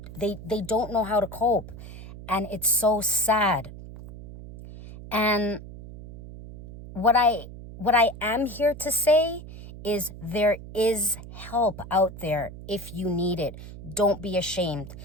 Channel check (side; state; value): right; noise; hum, 14 dB below the sound